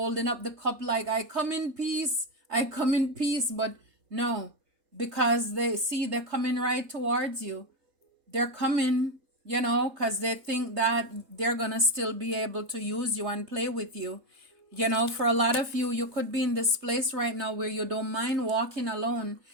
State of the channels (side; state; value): left; late; 3.3 ms